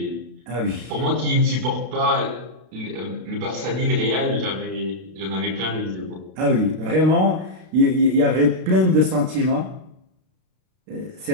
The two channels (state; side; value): late; left; 32 ms